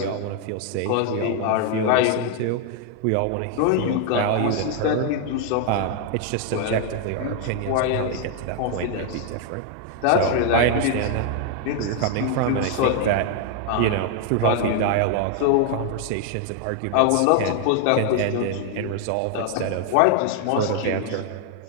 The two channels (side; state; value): both; different; correlation 0.00